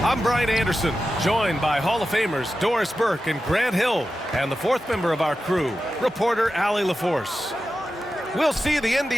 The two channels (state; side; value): normal; both; correlation 0.92